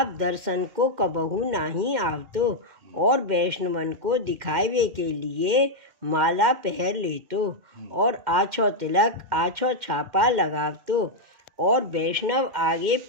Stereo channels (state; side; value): late; left; 2.1 ms